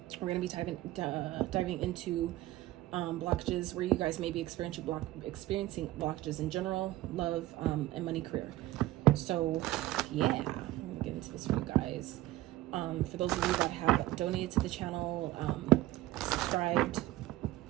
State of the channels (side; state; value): left; quieter; 16.3 dB